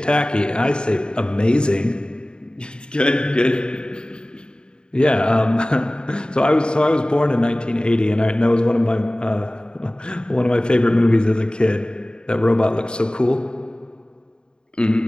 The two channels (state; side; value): late; right; 0.049 ms